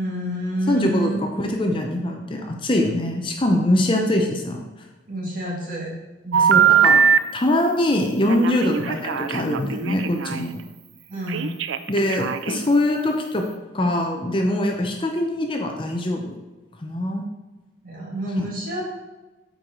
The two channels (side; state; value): both; normal; correlation 0.56